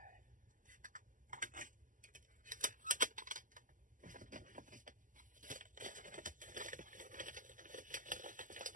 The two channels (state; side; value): late; left; 0.38 ms